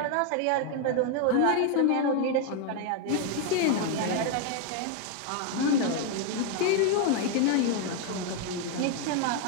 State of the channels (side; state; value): both; different; correlation 0.01